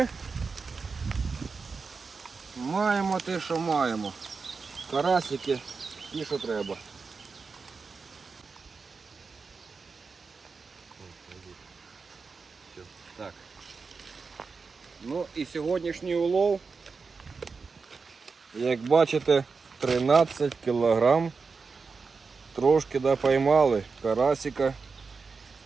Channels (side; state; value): left; quieter; 4.7 dB